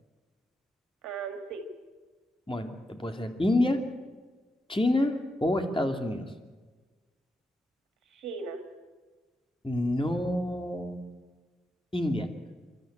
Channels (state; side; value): normal; both; correlation 0.85